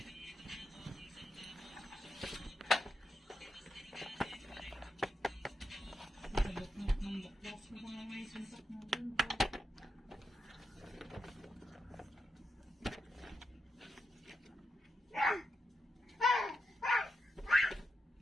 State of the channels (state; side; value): normal; both; correlation 0.85